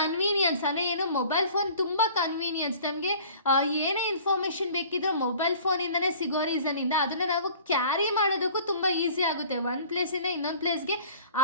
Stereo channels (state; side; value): inverted; both; correlation -0.47